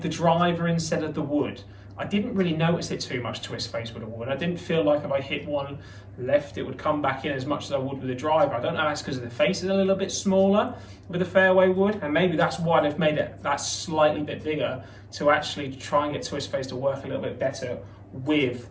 the driver instead of the wood. I didn't really notice it too much Twist Face with a wood. I didn't feel like if I hit one left, it would come back in as much as I would with the driver. I don't know if that's because the face is a little bit smaller with the fairway wood, and maybe that's why they've made it that slightly bit bigger to actually try and get Twist Face to work a little bit better with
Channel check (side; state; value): both; identical; correlation 1.00